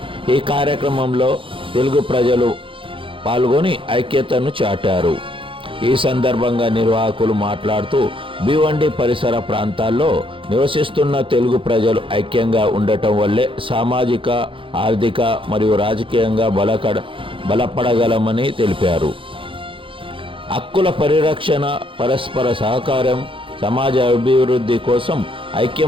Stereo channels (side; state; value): left; late; 0.25 ms